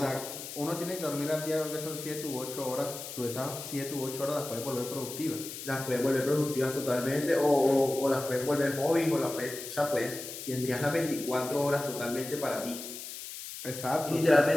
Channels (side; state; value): left; noise; hiss, 10 dB below the sound